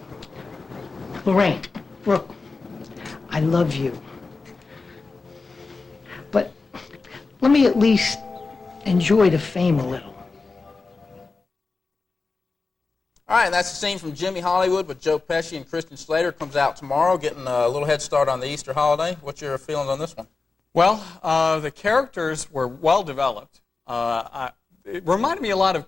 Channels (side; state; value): right; quieter; 4.0 dB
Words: Lorraine, look, I love you. But let me at least enjoy the fame a little. All right, that's the scene from Jimmy Hollywood with Joe Pesci and Christian Slater. Comes out tomorrow, getting a little head start on the Easter holiday. What's your feelings on this one? Well, the characters were well developed. It reminded me a lot